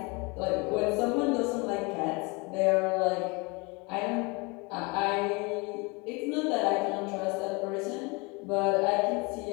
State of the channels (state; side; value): quieter; right; 28.2 dB